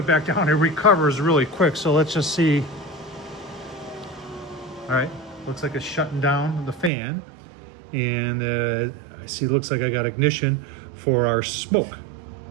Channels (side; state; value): left; drops out; at 6.9 s